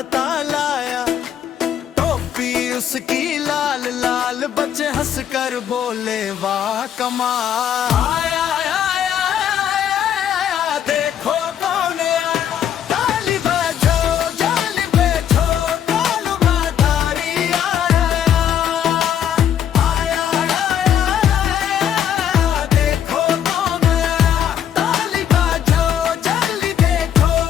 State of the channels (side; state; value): right; quieter; 9.5 dB